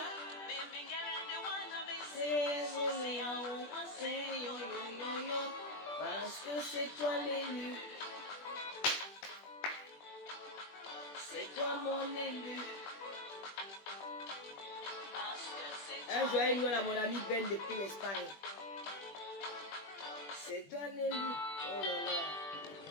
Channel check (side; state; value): right; late; 20 ms